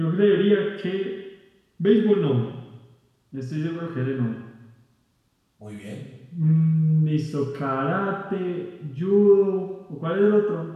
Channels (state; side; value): identical; both; correlation 1.00